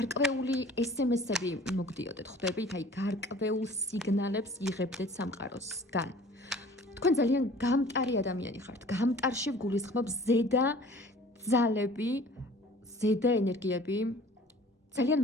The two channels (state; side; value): normal; both; correlation 0.48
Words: SMS-ები მოგდიოდეთ, ხვდებით, აი გარკვეულ სიგნალებს იღებდეთ სამყაროსგან. თქვენ ძალიან გამტარი ადამიანი ხართ. გამტარში გულისხმობ ზედა ძალები, ზედა ენერგიები ძალიან